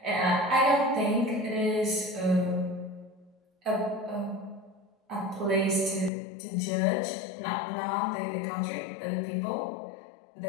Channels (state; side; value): drops out; right; at 6.1 s